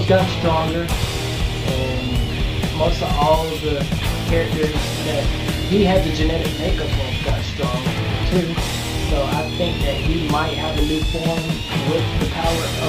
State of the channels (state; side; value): identical; both; correlation 1.00